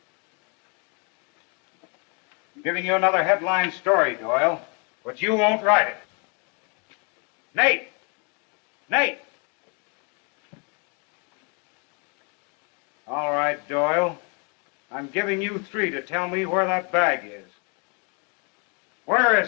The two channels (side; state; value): right; quieter; 35.1 dB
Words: I'm giving you another headline story, Doyle, but you won't write it. Nate! Nate! All right, Doyle. I'm giving you 3 to tell me where that bag is. Where